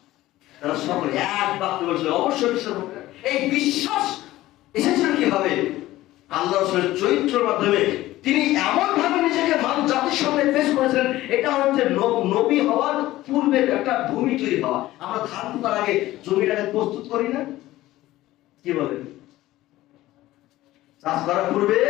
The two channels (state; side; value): quieter; right; 16.2 dB